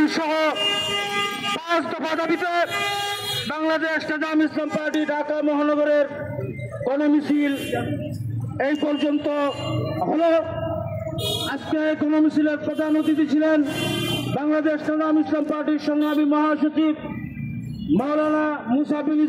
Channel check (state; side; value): identical; both; correlation 1.00